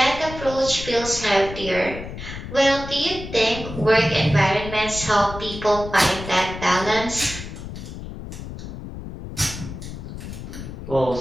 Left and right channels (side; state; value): left; noise; rumble, 10 dB below the sound